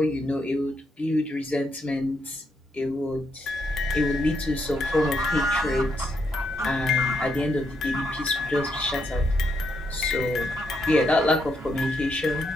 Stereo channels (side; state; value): both; normal; correlation 0.78